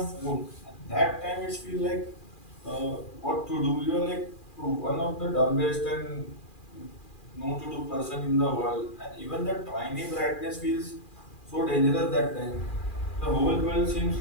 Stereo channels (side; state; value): right; late; 2.4 ms